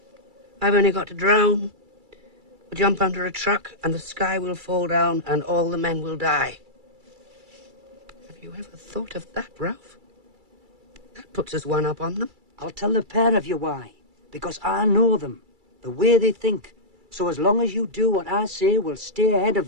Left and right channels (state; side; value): late; left; 2.3 ms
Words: I've only got to drown. We'll jump under a truck and the sky will fall down and all the men will die. Have you ever thought of that, Ralph? That puts us one up on them. I'll tell the pair of you why. Because I know them. The way they think. So as long as you do what I say, we'll stay ahead of